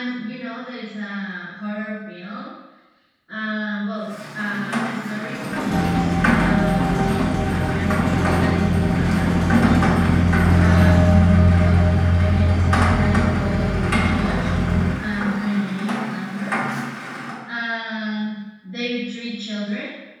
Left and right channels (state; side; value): identical; both; correlation 1.00